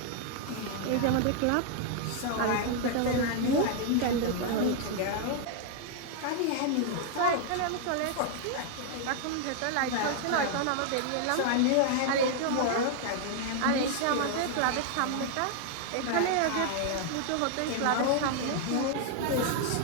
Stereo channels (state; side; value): different; both; correlation 0.00